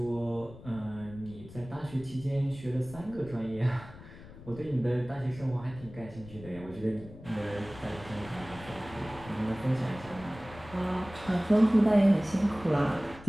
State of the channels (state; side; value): noise; left; rumble, 17 dB below the sound